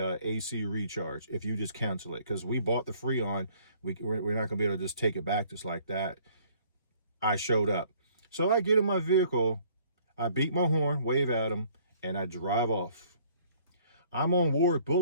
AC recharge if you just cancel it. Because we bought the Freon. We're not going to be able to just take it back just like that. I showed up. So I get in my vehicle. I beat my horn, wave at him, and I drive off. I'm on Ward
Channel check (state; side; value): inverted; both; correlation -0.58